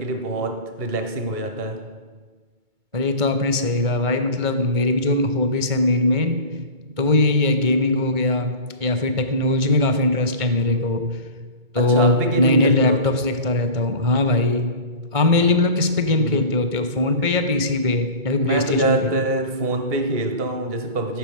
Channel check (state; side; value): late; left; 2.2 ms